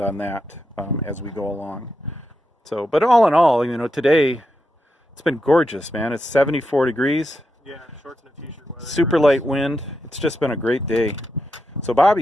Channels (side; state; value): both; normal; correlation 0.85